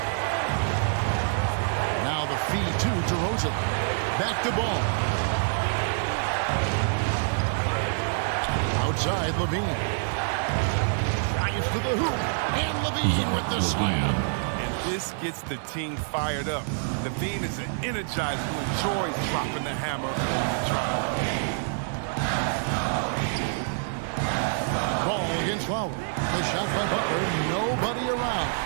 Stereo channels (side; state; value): left; silent; 60 dB below the other